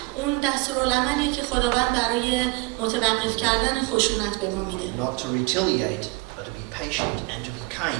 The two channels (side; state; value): left; quieter; 25.0 dB